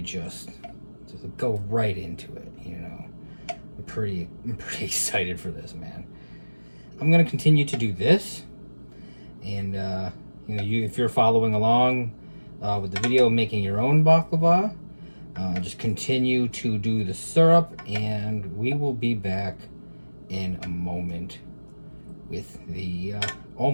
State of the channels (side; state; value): both; inverted; correlation -1.00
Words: just go right into it, you know. I'm pretty excited for this, man. I'm gonna continue to do this, and you know, if you're following along with the video, making your own baklava, just continue to do the syrup, and we will be back in a moment with the